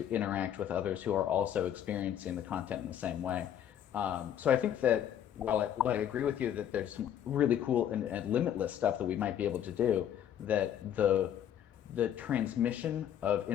interact with others who are also experiencing the content in the same way. So I think that while I agree with you that there's some really cool and limitless stuff that we might be able to do, that the transmission of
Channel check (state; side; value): quieter; right; 10.0 dB